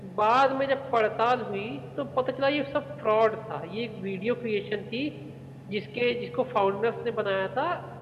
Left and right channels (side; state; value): both; identical; correlation 1.00